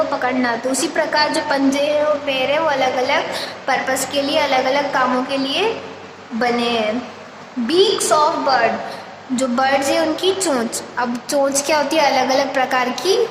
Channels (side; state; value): both; identical; correlation 1.00